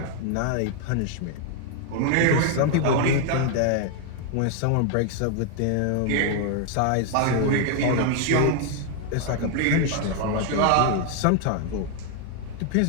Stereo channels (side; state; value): both; different; correlation 0.00